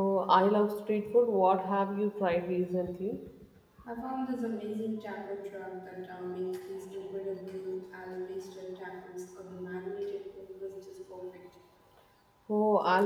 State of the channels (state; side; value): identical; both; correlation 1.00